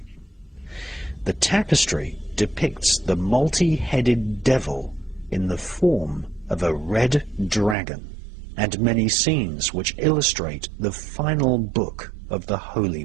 The tapestry depicts the multi-headed devil in the form of a red dragon, and many scenes which illustrate the final book of the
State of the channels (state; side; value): drops out; left; at 7.8 s